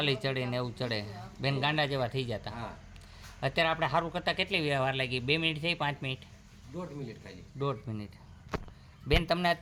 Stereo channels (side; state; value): both; identical; correlation 1.00